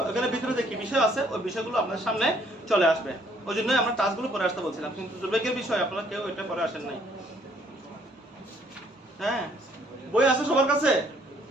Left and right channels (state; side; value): normal; both; correlation 0.64